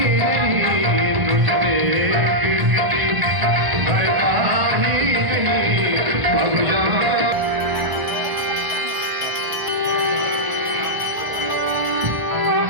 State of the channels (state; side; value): late; left; 1.0 ms